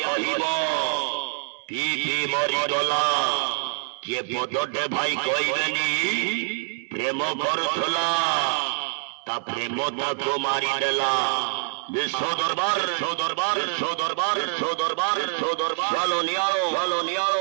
कहब पी पी मरीगला किए पदटे भाई कहबेनी प्रेम करुला ता प्रेम ताको मारिदेला विश्व दरबार विश्व दरबार विश्व दरबार विश्व दरबार विश्व दरबार चलो नियारो चलो नियारो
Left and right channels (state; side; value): silent; left; 62 dB below the other